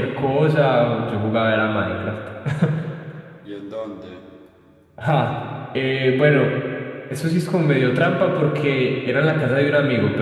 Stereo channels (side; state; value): both; identical; correlation 1.00